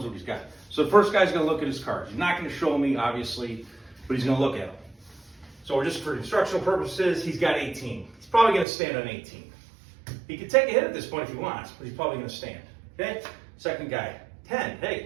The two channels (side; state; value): left; drops out; at 8.7 s